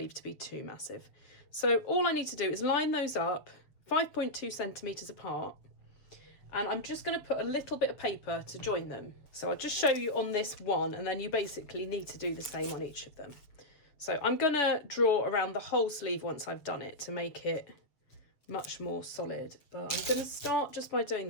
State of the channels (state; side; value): late; right; 7.0 ms